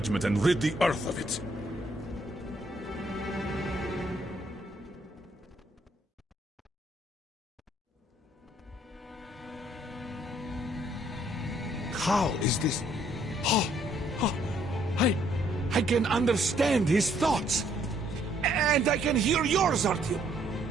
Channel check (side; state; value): both; normal; correlation 0.67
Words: and rid the Earth of it. How is this? Oh, I can understand his thoughts. And I can hear yours, Artyom.